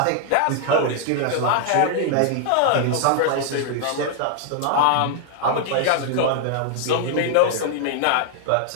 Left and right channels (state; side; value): different; both; correlation 0.00